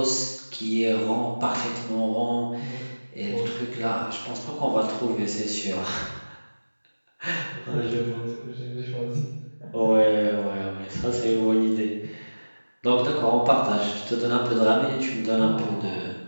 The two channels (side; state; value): both; inverted; correlation -1.00